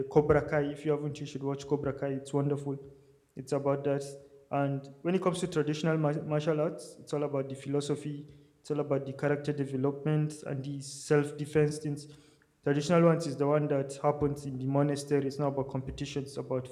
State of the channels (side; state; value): both; identical; correlation 1.00